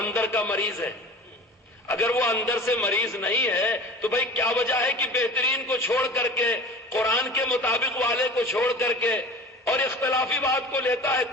کا مریض ہے. اگر وہ اندر سے مریض نہیں ہے تو بھائی کیا وجہ ہے کہ بہترین کو چھوڑ کر کے، قرآن کے مطابق والے کو چھوڑ کر کے اور اختلافی بات کو لیتا ہے؟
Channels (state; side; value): normal; both; correlation 0.39